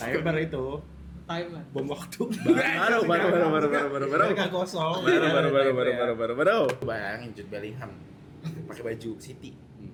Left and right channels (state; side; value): identical; both; correlation 1.00